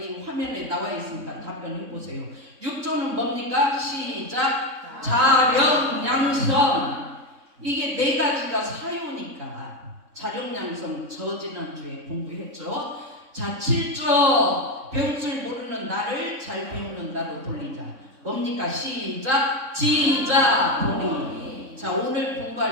화면에 나와 있으니까 답변해 보세요. 6조는 뭡니까? 시작. 자력양성. 이게 네 가지가 사요니까 자력양성 저지난주에 공부했죠. 자 7조 배울 줄 모르는 나를 잘 배우는 나로 돌리자. 뭡니까? 시작. 지자본의. 자 오늘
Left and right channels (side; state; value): left; late; 3.6 ms